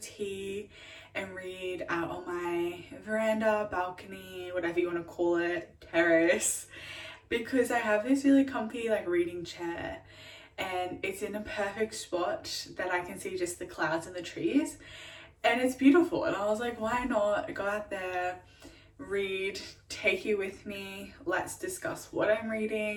and read out on my veranda, balcony, whatever you want to call it, terrace, because I have this really comfy like reading chair and it's in a perfect spot that I can see just the clouds and the trees and it's beautiful. And I was like, why not go out there, read, take you with me, let's discuss what I'm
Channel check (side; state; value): both; identical; correlation 1.00